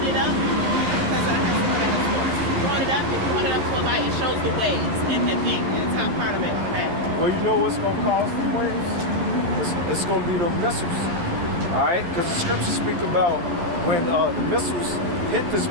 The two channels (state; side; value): late; left; 12 ms